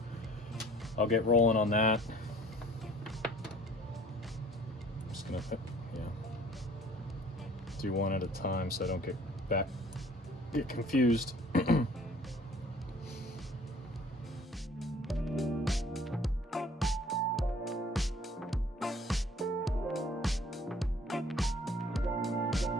I'll get rolling on that. I'm just gonna do one at a time so I don't get confused.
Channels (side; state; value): both; normal; correlation 0.53